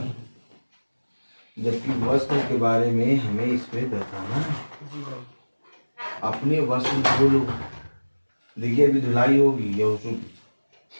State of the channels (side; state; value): both; inverted; correlation -1.00